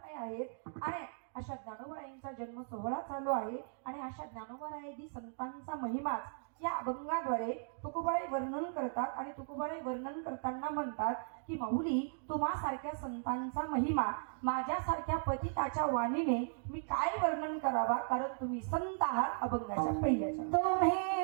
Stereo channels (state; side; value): silent; left; digital silence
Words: आहेत. आणि अशा ज्ञानोबरायांचा जन्म सोहळा चालू आहे. आणि अशा ज्ञानोबरायादी संतांचा महिमाच या अभंगाद्वारे तुकोबाराय वर्णन करतात. आणि तुकोबाराय वर्णन करताना म्हणतात की माऊली, तुम्हासारख्या संतांचा महिमा माझ्यासारख्या पतिताच्या वाणीने मी काय वर्णन करावा, कारण तुम्ही संत आहात. अभंगाच्या पहिल्याच्या तुम्ही